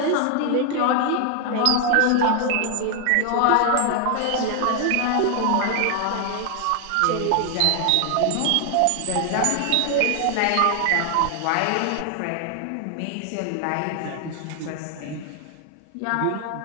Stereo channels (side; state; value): both; different; correlation 0.00